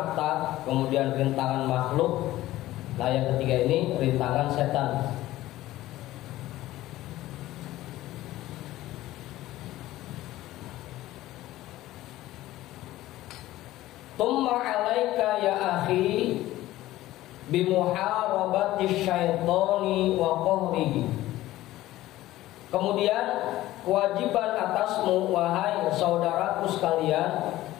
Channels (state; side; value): quieter; right; 15.8 dB